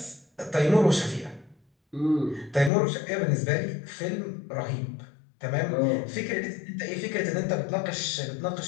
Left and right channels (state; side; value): drops out; right; at 2.7 s